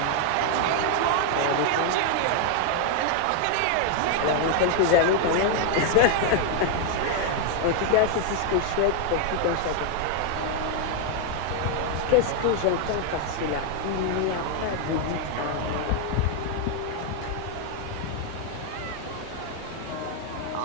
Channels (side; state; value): both; different; correlation 0.00